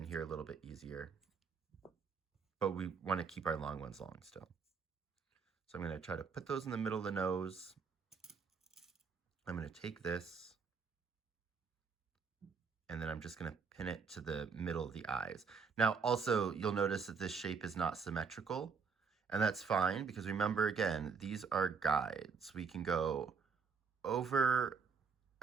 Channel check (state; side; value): quieter; left; 5.5 dB